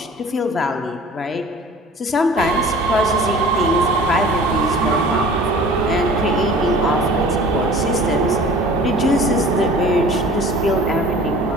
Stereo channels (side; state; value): both; normal; correlation 0.45